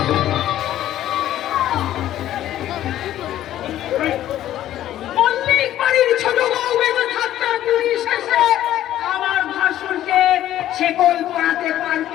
মল্লিক বাড়ির ছোট বউ বেঁচে থাকতে পুলিশ এসে আমার ভাসুরকে শেকল পরাতে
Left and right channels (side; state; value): right; quieter; 12.7 dB